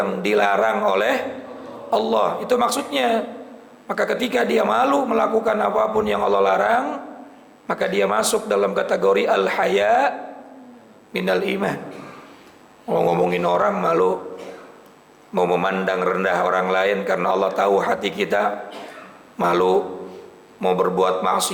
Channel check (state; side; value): identical; both; correlation 1.00